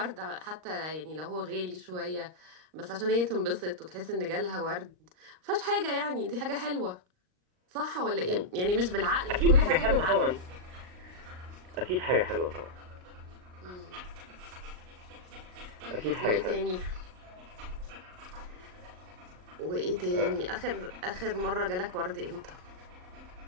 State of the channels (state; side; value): late; left; 39 ms